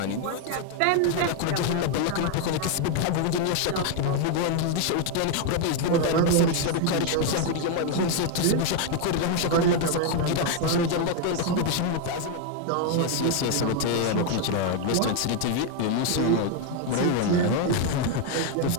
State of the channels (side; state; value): both; different; correlation 0.01